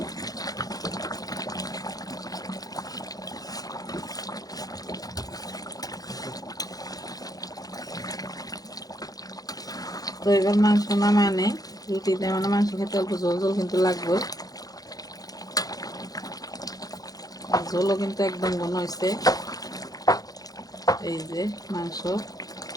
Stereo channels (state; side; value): late; right; 0.18 ms